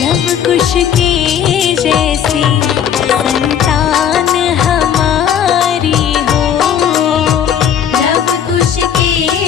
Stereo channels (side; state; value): right; quieter; 8.9 dB